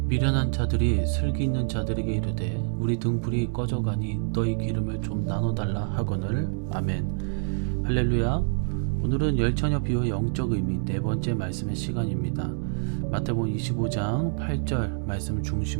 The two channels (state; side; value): silent; left; digital silence